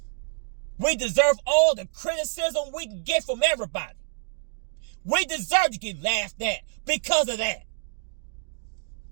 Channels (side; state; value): left; silent; digital silence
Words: We deserve all the criticism we can get from everybody. We deserve to get laughed at because of that.